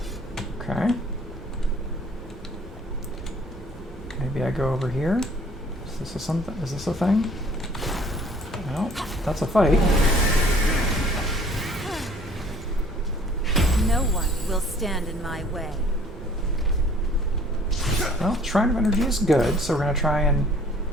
Okay. Maybe I go over here. Is this a thing? No, that's a fight. No one will stand in my way. Well, Shrine of Energy is good, so we're gonna try and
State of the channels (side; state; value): both; normal; correlation 0.55